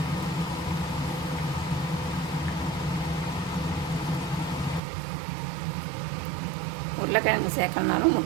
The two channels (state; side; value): drops out; left; at 4.8 s